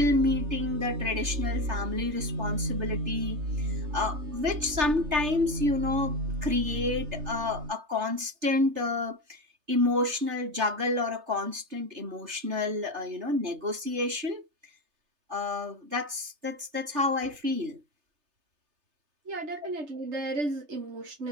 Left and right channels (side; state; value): left; late; 3.3 ms